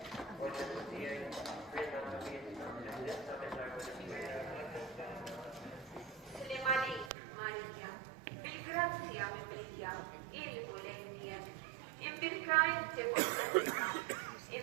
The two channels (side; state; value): left; drops out; at 7.1 s